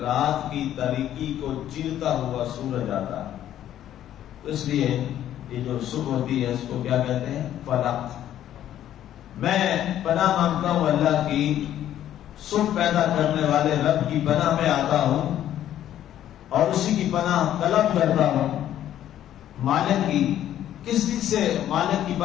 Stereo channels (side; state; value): right; quieter; 11.6 dB